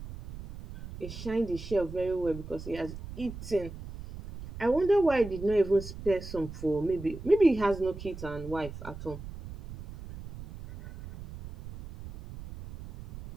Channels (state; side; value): noise; right; rumble, 12 dB below the sound